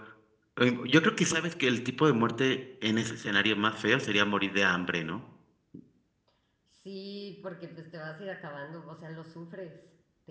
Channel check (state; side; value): identical; both; correlation 1.00